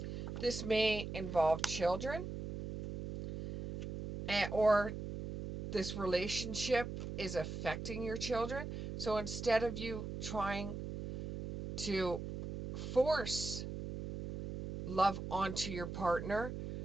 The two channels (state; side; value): noise; right; hum, 6 dB below the sound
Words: This may involve children, or this relationship is affecting your children. So instead of you trying to force love onto your partner,